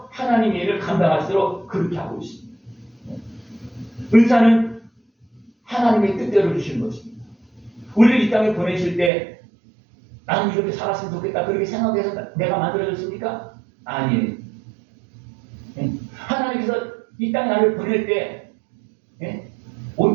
하나님의 일을 감당할수록 그렇게 하고 있습니다. 은사는 하나님의 뜻대로 주시는 것입니다. 우리를 이 땅에 보내실 때 나는 이렇게 살았으면 좋겠다 그렇게 생각해서 내가 만들어졌습니까? 아니에요. 하나님께서 이 땅에 나를 보낼 때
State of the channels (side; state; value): left; drops out; at 9.1 s